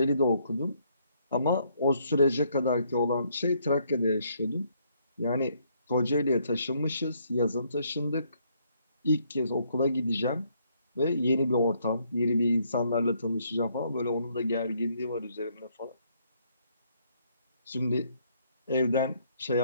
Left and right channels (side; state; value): both; inverted; correlation -0.70